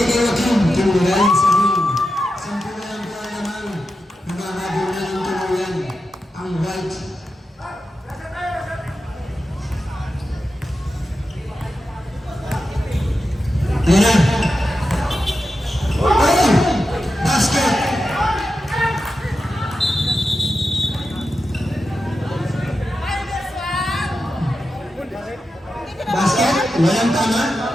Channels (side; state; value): both; normal; correlation 0.90